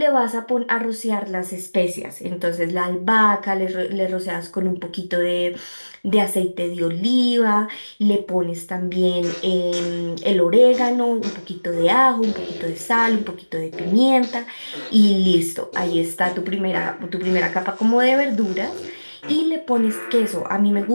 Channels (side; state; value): both; inverted; correlation -1.00